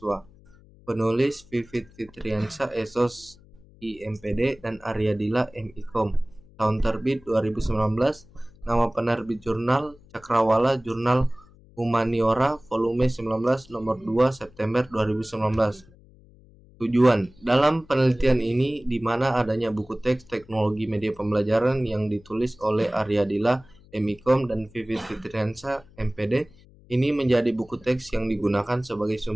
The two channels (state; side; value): noise; left; hum, 26 dB below the sound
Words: Penulis Vivit Fitriansyah Esos IMPD dan Arya Dila MIKOM. Tahun terbit 2019. Nama penerbit jurnal Cakrawala Jurnal Humaniora Volume 19 nomor 2 September 2019. Tujuan dalam penelitian ini di mana adanya buku teks teknologi media pembelajaran yang ditulis oleh Arya Dila MIKOM dan Vivit Fitriansyah MPD. Ini menjadi buku teks yang digunakan sebagai